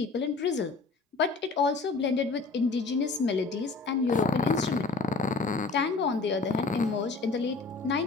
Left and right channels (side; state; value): right; quieter; 4.1 dB